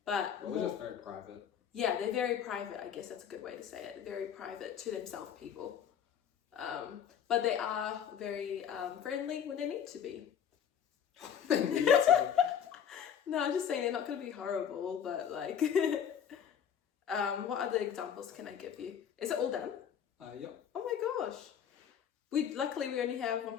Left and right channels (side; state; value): right; quieter; 8.4 dB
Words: but we're just very private. Yeah, they're very private. I guess that's a good way to say it. Very private, to themselves people. But they are very friendly when they need to be. They need to be. No, I'm just saying they're not going to be horrible, but like, what other examples can I give you? Is it all done? Yep. Oh my gosh. Luckily we only have one